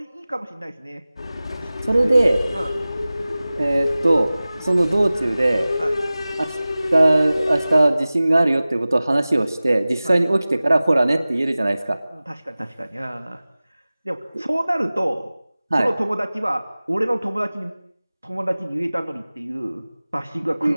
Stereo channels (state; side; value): inverted; both; correlation -0.98